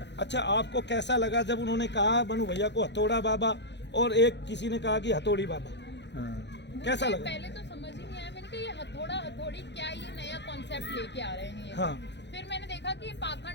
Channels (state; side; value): late; right; 0.51 ms